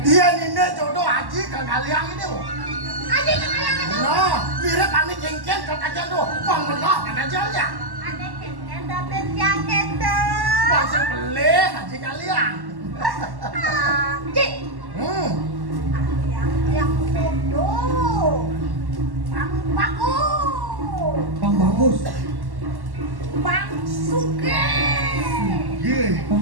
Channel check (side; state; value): left; late; 1.1 ms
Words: Iya nih jodoh aji ke kalian ini. Aja kalian itu. Nah, mirip ane kengkeng ke kajian tuh. Bang belah mana ajalnya. Ada kenten dapet yang itu. Pasal pelih aji kalian. Cik. Yang jodoh. Bang bagus. Bang bagus. Bang suke.